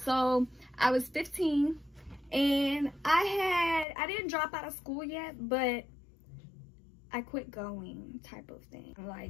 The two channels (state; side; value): drops out; right; at 3.9 s